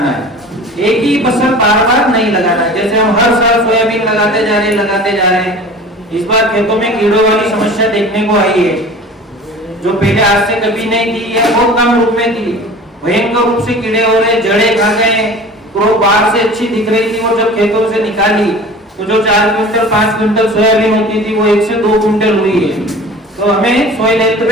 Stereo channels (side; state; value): both; normal; correlation 0.40